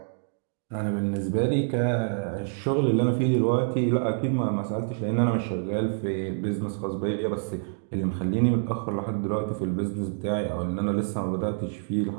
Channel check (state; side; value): silent; left; digital silence